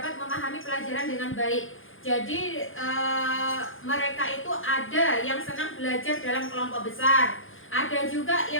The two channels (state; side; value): late; right; 0.58 ms